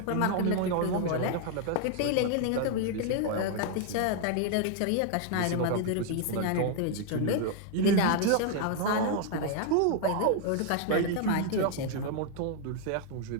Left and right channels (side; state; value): both; different; correlation 0.00